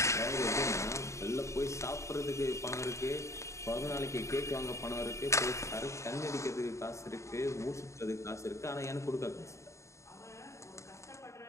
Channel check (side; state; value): right; late; 0.14 ms